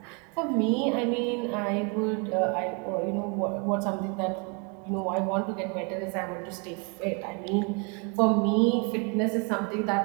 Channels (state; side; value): quieter; left; 33.3 dB